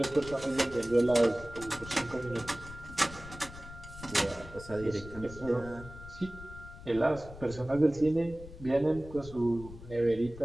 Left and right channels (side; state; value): left; noise; rumble, 15 dB below the sound